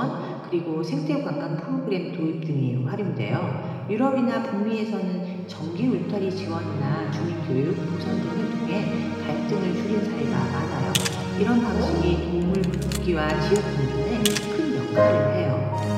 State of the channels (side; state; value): both; identical; correlation 1.00